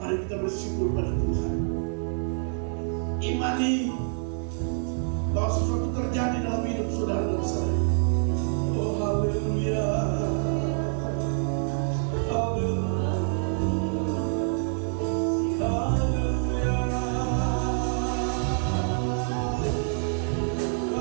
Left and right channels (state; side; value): silent; left; 60 dB below the other